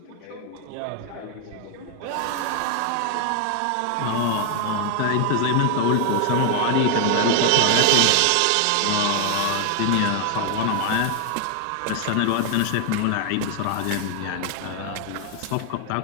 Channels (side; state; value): both; different; correlation 0.00